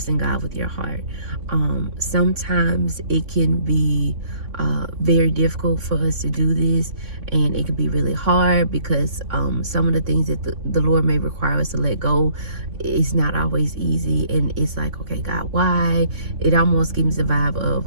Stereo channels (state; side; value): late; left; 3.5 ms